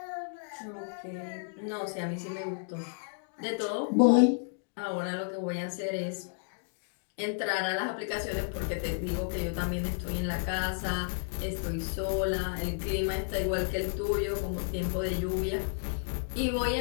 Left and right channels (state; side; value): silent; right; digital silence